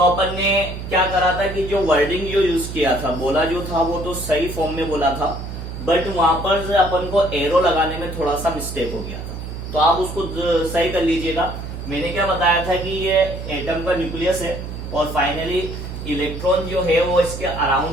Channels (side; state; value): right; noise; hum, 8 dB below the sound